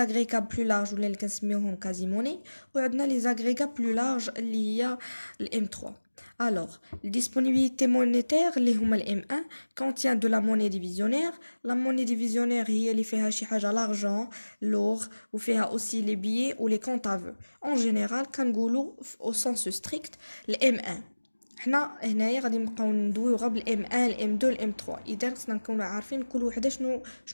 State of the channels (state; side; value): inverted; both; correlation -1.00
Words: plus larges ولا اللي كنسميوهم quasi monnaie وعندنا les agrégats plus larges اللي هي M3. Alors, les disponibilités monétaires اللي هما M1 contient de la monnaie divisionnaire. La monnaie divisionnaire هي اللي فيها شي حاجة l'argent, l'or وفيها aussi les billets ou les comptes à vœux. En général كنقولوا au sens strict M1. حنا هنايا غادي نبقاو ندويو غير بالM1 الM2 الM3. إذا خصنا نكونوا عارفين كل وحدة